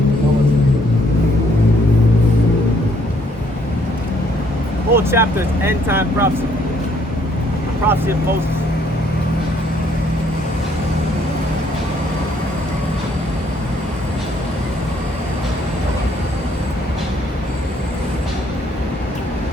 whole chapter is end time prophecy. The prophecy of Moses.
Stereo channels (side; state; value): both; normal; correlation 0.67